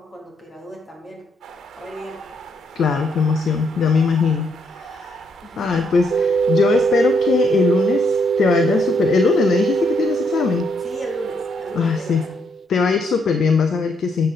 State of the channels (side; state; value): both; normal; correlation 0.74